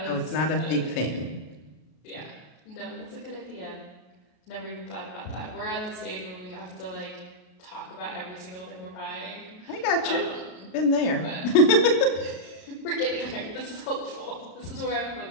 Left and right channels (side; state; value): right; late; 33 ms